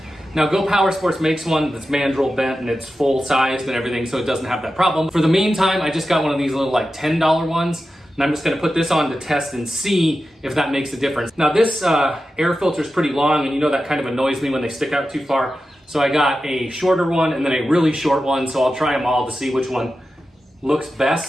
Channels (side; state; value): both; normal; correlation 0.92